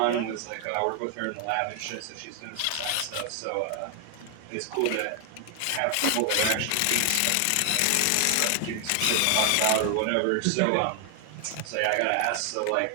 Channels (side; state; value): both; different; correlation 0.00